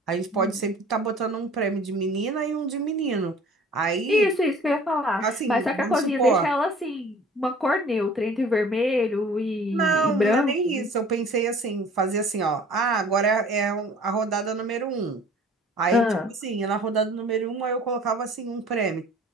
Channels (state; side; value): normal; both; correlation 0.49